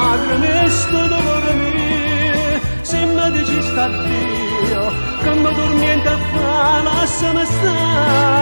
sto dolore mio, se mi dici sta Dio, che mi dormiente a fa, lasciami stare.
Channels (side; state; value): both; inverted; correlation -1.00